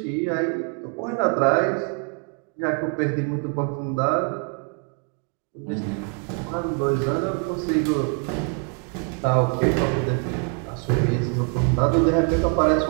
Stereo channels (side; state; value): left; quieter; 39.7 dB